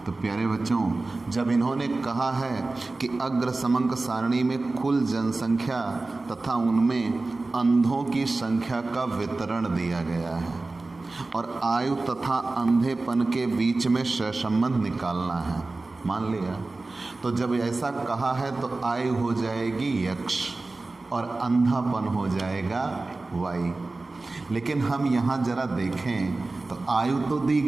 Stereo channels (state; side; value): quieter; left; 3.3 dB